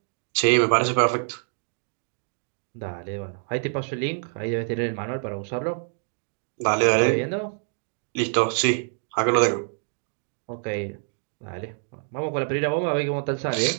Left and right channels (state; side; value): silent; left; 61 dB below the other